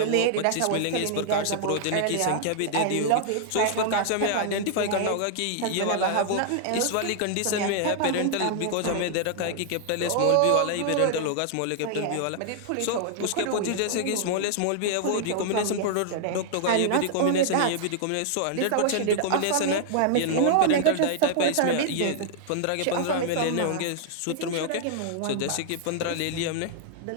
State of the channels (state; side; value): different; both; correlation -0.01